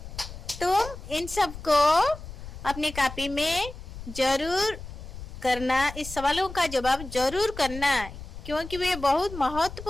तुम इन सब को अपनी कॉपी में जरूर करना, इस सवालों का जवाब जरूर करना, क्योंकि वे बहुत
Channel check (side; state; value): left; noise; rumble, 12 dB below the sound